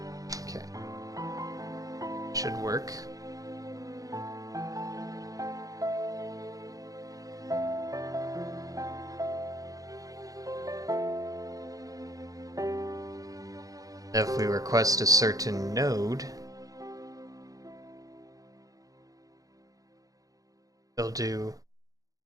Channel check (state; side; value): late; left; 0.17 ms